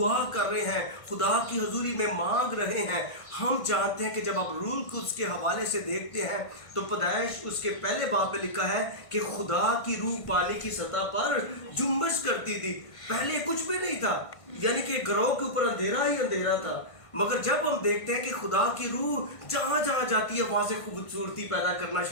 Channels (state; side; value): late; right; 1.5 ms